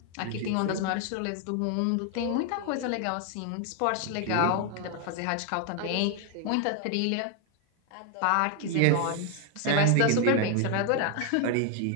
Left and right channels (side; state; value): both; different; correlation 0.01